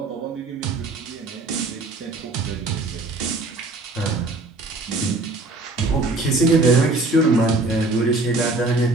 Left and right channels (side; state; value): left; quieter; 3.1 dB